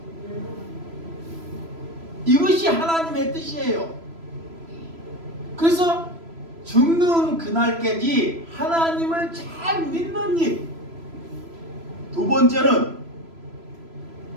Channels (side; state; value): left; late; 3.0 ms